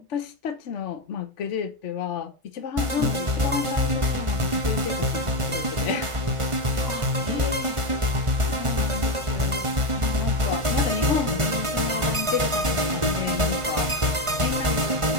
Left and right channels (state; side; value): late; left; 1.4 ms